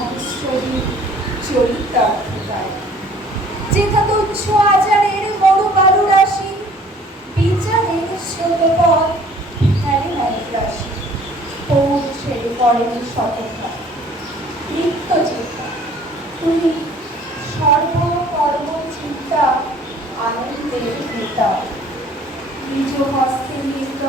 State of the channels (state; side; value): normal; both; correlation 0.54